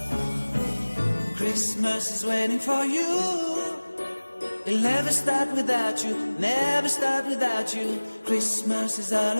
Christmas is waiting for you. It'll never start without you, never start without you. Christmas is all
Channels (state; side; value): inverted; both; correlation -1.00